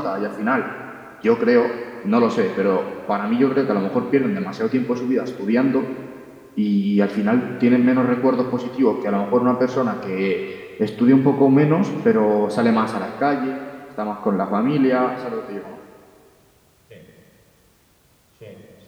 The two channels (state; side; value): identical; both; correlation 1.00